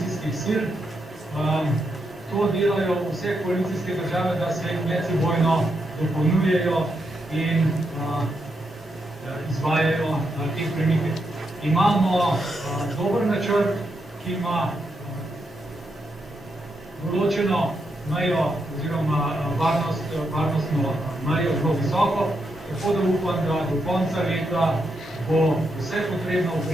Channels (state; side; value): normal; both; correlation 0.82